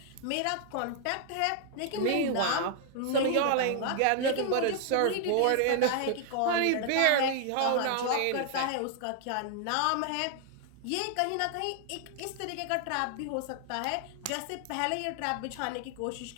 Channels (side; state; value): both; different; correlation 0.00